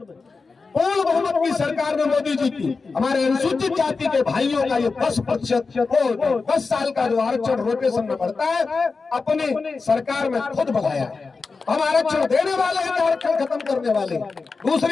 पूर्ण बहुमत की सरकार ने मोदी जी की हमारे अनुसूचित जाति के भाइयों का ये 10% 10 साल का जो आरक्षण रोटेशन में बढ़ता है, अपनी सरकार में खुद बढ़ाया है। हम आरक्षण देने वाले हैं, आरक्षण खत्म करने वाले हैं।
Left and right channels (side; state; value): right; quieter; 4.4 dB